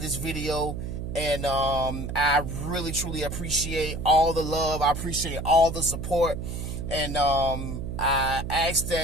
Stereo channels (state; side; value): noise; right; hum, 6 dB below the sound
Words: video. And I really, truly appreciate all the love. I appreciate all the support. And I ask